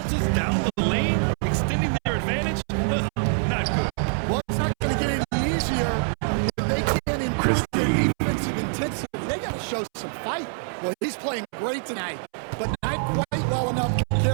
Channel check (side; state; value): left; silent; 62 dB below the other